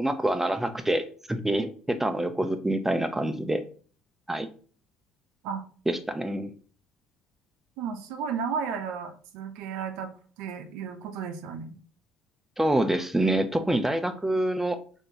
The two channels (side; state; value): both; normal; correlation 0.83